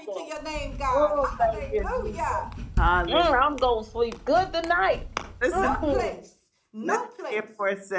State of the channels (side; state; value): both; identical; correlation 1.00